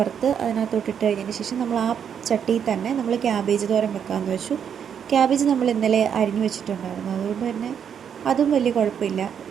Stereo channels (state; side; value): quieter; left; 8.0 dB